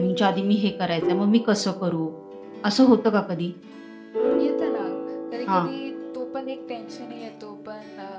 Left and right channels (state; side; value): identical; both; correlation 1.00